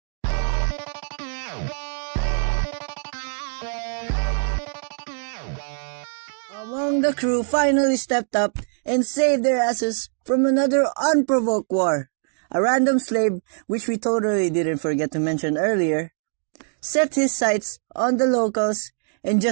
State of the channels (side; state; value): left; silent; 63 dB below the other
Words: Among the crew finally stepped up and saved their asses from another unprovoked war. A random slave, which we totally didn't forget to mention earlier, set his sights on the locals and